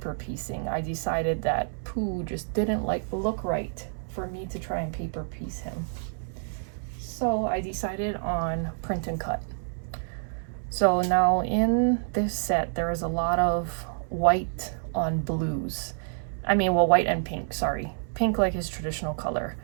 piecing, I decided that Pooh just didn't look right for me to try and paper piece him. So I decided on print and cut. So now in this set, there is a lot of white on blues. I mean, well, white and pink, sorry. Pink like his traditional color.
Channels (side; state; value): left; silent; 59 dB below the other